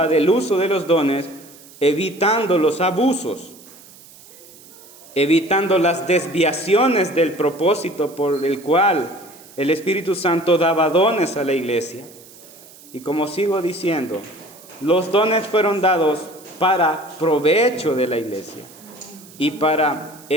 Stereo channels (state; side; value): noise; right; hiss, 22 dB below the sound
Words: del uso de los dones, evitando los abusos, evitando las desviaciones del propósito por el cual el Espíritu Santo daba dones a la iglesia. Y como sigo diciendo, los dones fueron dados para provecho de la iglesia y para